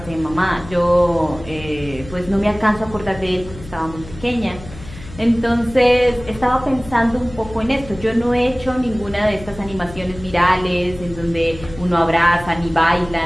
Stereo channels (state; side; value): noise; left; hum, 16 dB below the sound